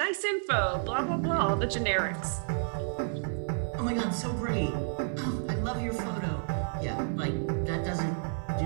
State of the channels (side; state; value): left; silent; 57 dB below the other